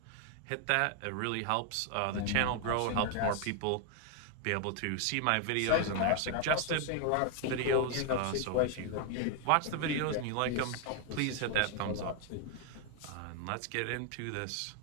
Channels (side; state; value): both; different; correlation 0.00